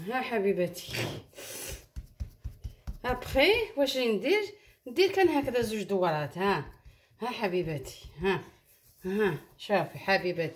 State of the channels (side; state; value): both; identical; correlation 1.00